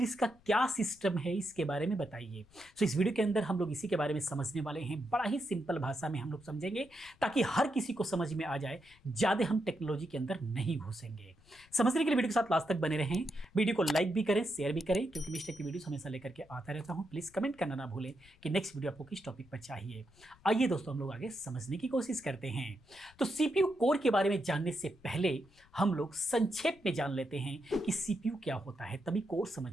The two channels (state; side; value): noise; left; rumble, 28 dB below the sound